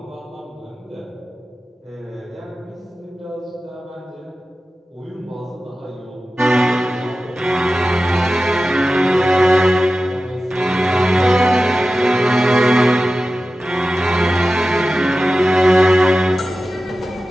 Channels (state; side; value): normal; both; correlation 0.94